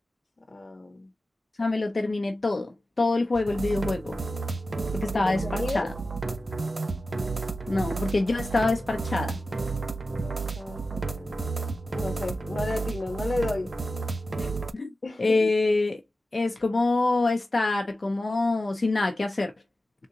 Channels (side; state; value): both; normal; correlation 0.93